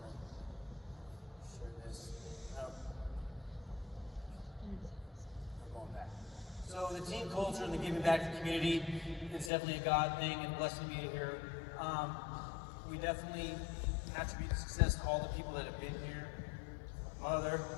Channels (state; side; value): drops out; right; at 9.5 s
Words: to share this. No. I'm going back. So the team culture and the giving back to the community, it's definitely a God thing, and blessed to be here. We definitely attribute the success to all the people that have been here. My mother